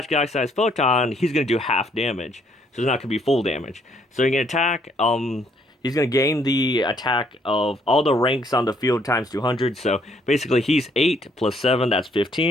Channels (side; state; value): both; normal; correlation 0.67